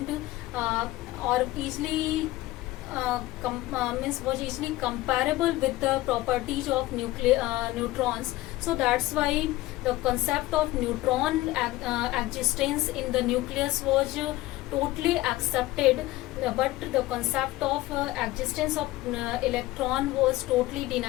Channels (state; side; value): quieter; right; 17.8 dB